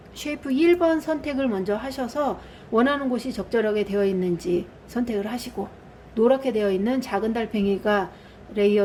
선택을 먼저 하셔서 원하는 곳이 적절하게 되어 있는지 선택을 하시고 노랗게 되어 있는 작은 달팽이가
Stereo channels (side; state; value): both; identical; correlation 1.00